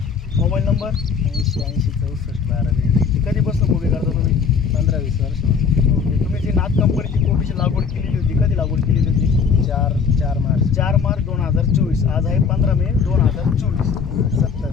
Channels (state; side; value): quieter; right; 5.9 dB